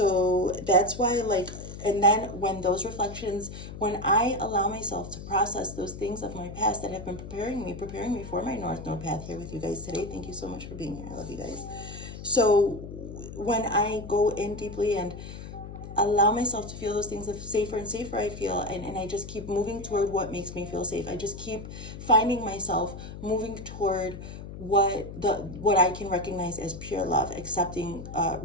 that's why, like, and then when those reflections, when I allow myself to process those things of my past that have been preparing me for my North Node path here with you guys today. Thank you so much for being here. I love you guys. So when I go in deeply and allow myself to feel those things, the safer and safer I feel, and I just keep moving toward what makes me feel safe. I just keep finding myself moving toward what I can recognize as pure love, accepting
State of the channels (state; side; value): noise; left; hum, 11 dB below the sound